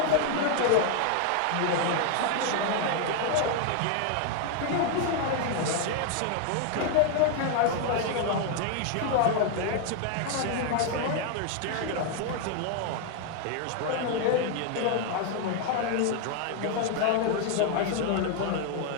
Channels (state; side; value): different; both; correlation 0.00